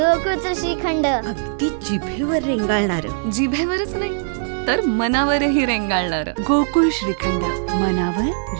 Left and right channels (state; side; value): silent; left; digital silence